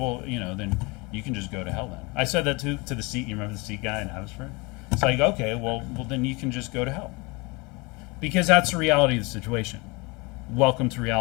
then you can just go to hell then. I said that to the Sikh. You remember the Sikh guy in Abbotsford? It's like, okay, well, then you can just go to hell. Because that's the reality of the situation. Welcome to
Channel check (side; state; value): right; quieter; 26.7 dB